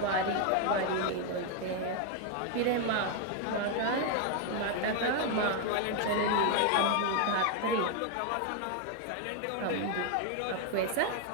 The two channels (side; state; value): both; different; correlation 0.01